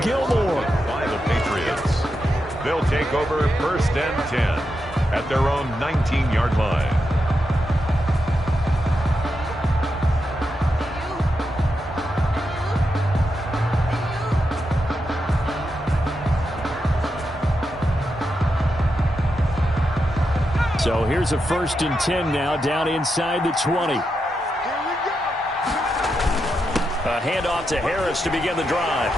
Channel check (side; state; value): both; normal; correlation 0.86